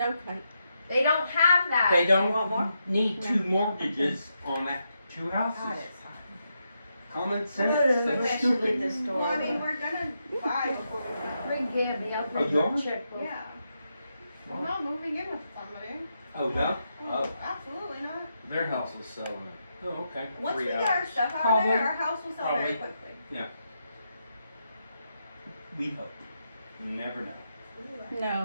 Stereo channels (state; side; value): inverted; both; correlation -0.83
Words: kite. They don't have that. They You want more? don't need two mortgages on that, two houses. Common sense, that's stupid. Well, I mean, we're gonna buy before we go. Bring Gabby, I'll Oh, give you a yours? checkbook. Yeah. I'm not moving in with somebody. Oh, no? Oh, Absolutely not. Their house is selling oh, okay. Once we 3 get our hours. stuff out of Probably. there, our house will sell very Probably. quickly. We hope. You never know.